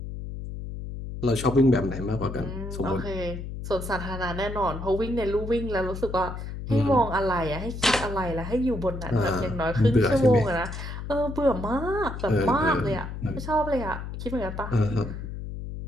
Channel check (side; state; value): left; noise; hum, 8 dB below the sound